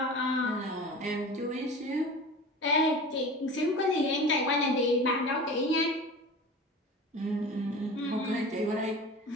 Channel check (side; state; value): both; normal; correlation 0.35